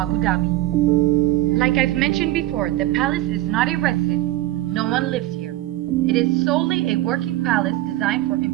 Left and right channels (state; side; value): quieter; left; 15.8 dB